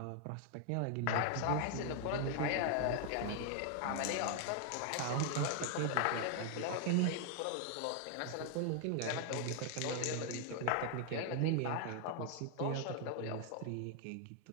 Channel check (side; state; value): both; different; correlation 0.00